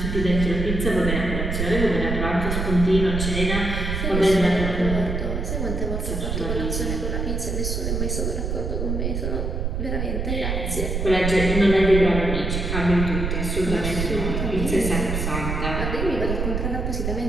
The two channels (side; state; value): right; noise; rumble, 2 dB below the sound